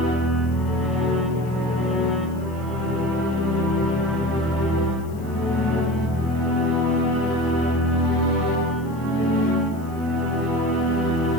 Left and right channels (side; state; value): left; noise; hiss, 26 dB below the sound